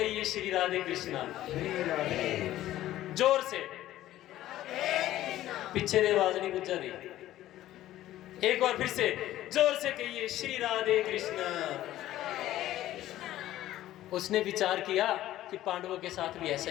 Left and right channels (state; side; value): quieter; right; 14.1 dB